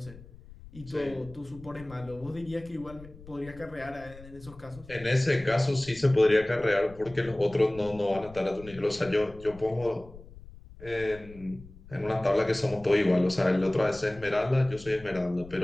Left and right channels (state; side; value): noise; left; rumble, 19 dB below the sound